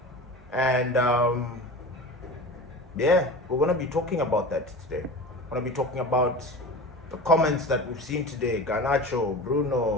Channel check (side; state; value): both; normal; correlation 0.33